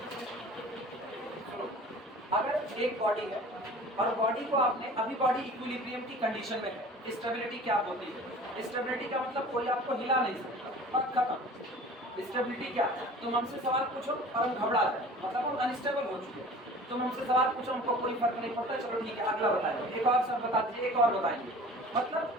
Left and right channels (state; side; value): normal; both; correlation 0.43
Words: अगर एक बॉडी है और बॉडी को आपने अभी बॉडी इक्विलिब्रियम की कंडीशन में है, स्टेबिलिटी क्या होती है, स्टेबिलिटी का मतलब कोई आपको हिला नहीं सकता और खत्म। स्टेबिलिटी क्या, तुम हमसे सवाल पूछो और हम घबरा जाए मतलब हम अनस्टेबल हो चुके हैं, तुम हमसे सवाल पूछो हमको कोई फर्क नहीं पड़ता चलो ठीक है अगला बताएंगे, एक और सब बता दीजिए एक और बताएंगे, मतलब